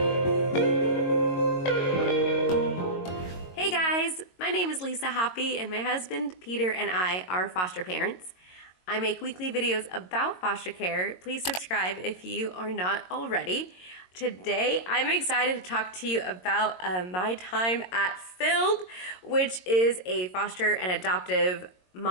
Hey guys, my name is Lisa Hoppy and my husband Peter and I are foster parents. I make weekly videos about foster care. Please subscribe if you are not already. Today, I'm excited to talk to you about my time at FILD, which is a foster and adoptive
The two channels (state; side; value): late; right; 22 ms